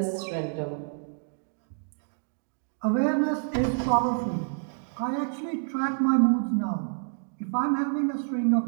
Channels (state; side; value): silent; left; digital silence